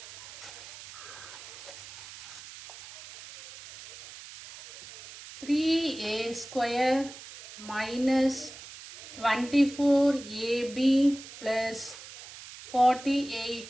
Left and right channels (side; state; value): right; noise; hiss, 15 dB below the sound